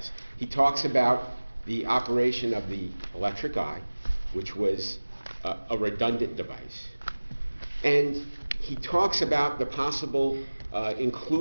He talks about the operation of the electric eye, which was a redundant device. And he talks about the possible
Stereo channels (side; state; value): both; inverted; correlation -1.00